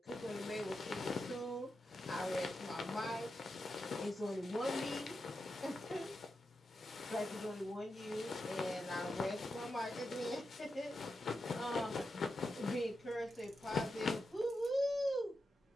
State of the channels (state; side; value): normal; both; correlation 0.88